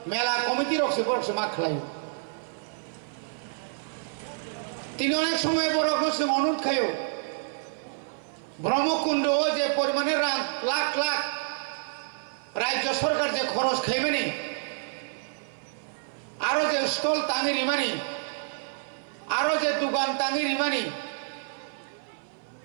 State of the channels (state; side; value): silent; left; 55 dB below the other